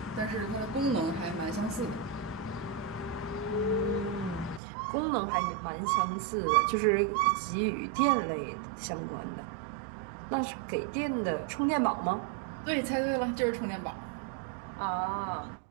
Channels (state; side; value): drops out; left; at 4.6 s